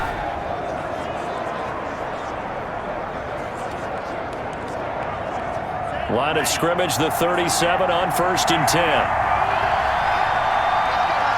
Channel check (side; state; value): both; identical; correlation 1.00